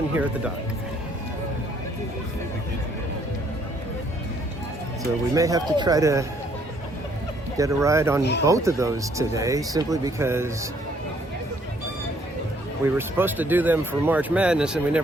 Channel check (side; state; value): both; normal; correlation 0.65